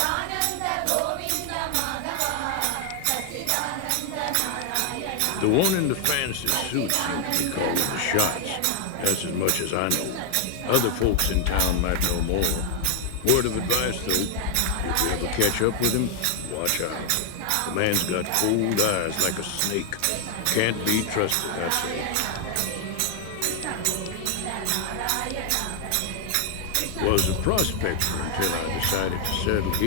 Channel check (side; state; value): both; different; correlation 0.00